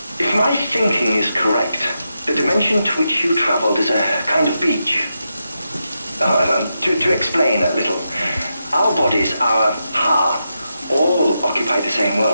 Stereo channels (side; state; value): both; inverted; correlation -0.86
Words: If my thinking is correct, the dimension to which you traveled is a kind of beach. To explain a little, our bodies, our ha, all occupy the same